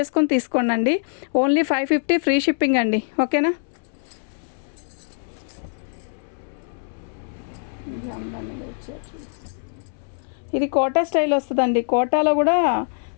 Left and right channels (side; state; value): right; silent; 63 dB below the other